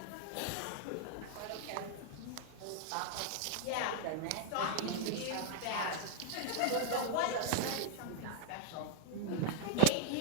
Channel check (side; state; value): both; different; correlation 0.00